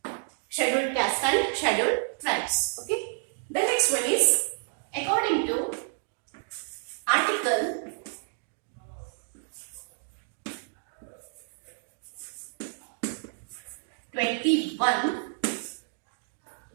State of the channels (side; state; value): left; silent; 56 dB below the other